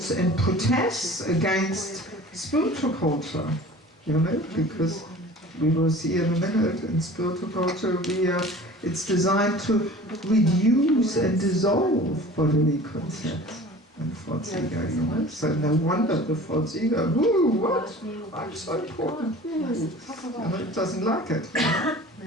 and protests against spiritual culture. You know, because we will see in a minute, in spiritual culture it's designed to reduce and dissolve bodily concepts and false ego, you know. So no wonder the false ego, ooh, what? I'm so important. Ooh. You know, it doesn't like it. You know?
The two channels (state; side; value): normal; both; correlation 0.43